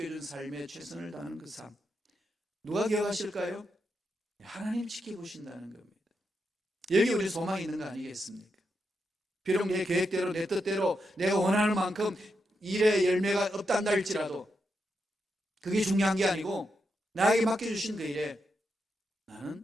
삶에 최선을 다하는 그 삶. 누가 기억하실까요? 하나님 지켜보신다는 겁니다. 여기 우리 소망이 있는 거 아니겠습니까? 비록 내 계획대로 내 뜻대로 내가 원하는 만큼 일의 열매가 없단다 할지라도 그게 중요한 게 아니고 나에게 맡겨주신 그 일에 나는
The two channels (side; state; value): both; normal; correlation 0.84